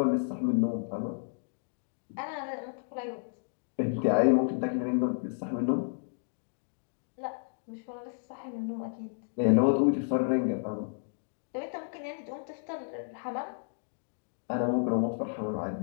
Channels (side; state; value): right; silent; digital silence